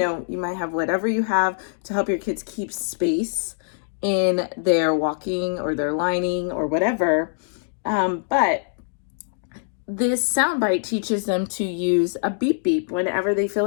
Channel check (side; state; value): right; silent; digital silence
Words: might have whatever you have to help your kids keep space in their walking or their lining or whatever. But this soundbite teaches them to use a beep beep whenever they feel